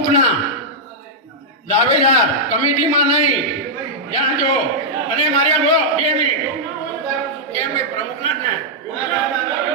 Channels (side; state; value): both; normal; correlation -0.08